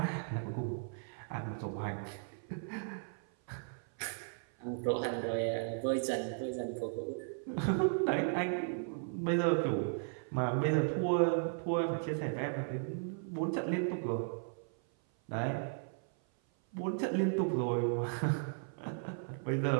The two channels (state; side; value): silent; left; 54 dB below the other